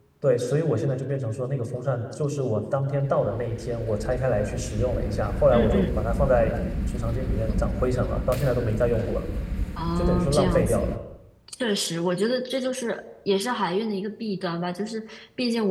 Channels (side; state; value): both; identical; correlation 1.00